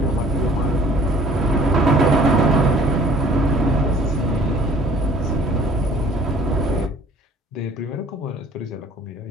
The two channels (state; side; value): normal; both; correlation 0.53